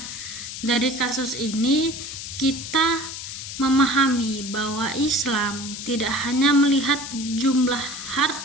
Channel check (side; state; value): left; noise; hiss, 8 dB below the sound